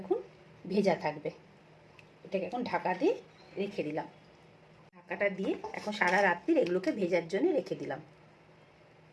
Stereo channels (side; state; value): both; identical; correlation 1.00